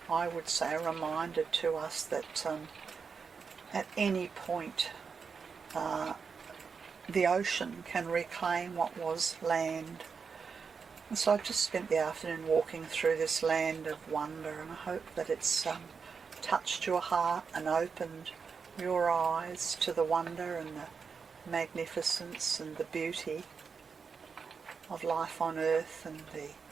I would say a reminder to us that at any point the ocean can reclaim what was land. And so I've just spent the afternoon walking through this land of wonder, and I hope that it's touched your heart and opened your eyes to the wonder and the magnificence and the beauty of life on earth and the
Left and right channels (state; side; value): quieter; left; 5.6 dB